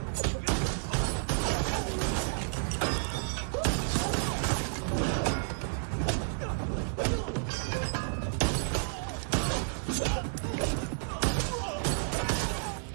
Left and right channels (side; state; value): left; silent; digital silence